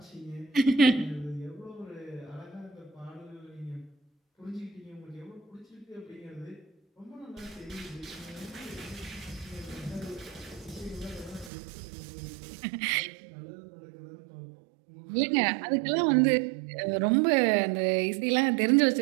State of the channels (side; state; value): left; drops out; at 11.5 s